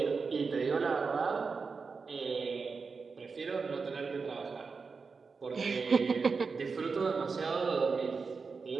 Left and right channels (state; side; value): quieter; left; 4.8 dB